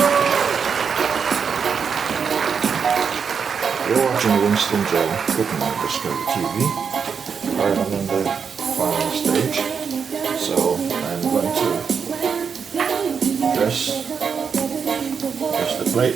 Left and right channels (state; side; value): quieter; left; 6.4 dB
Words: You're watching Winston Joe cooking on Discovery TV. Right, I'm in the final stage, so I'm going to dress the